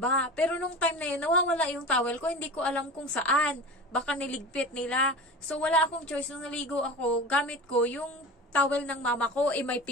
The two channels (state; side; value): normal; both; correlation 0.33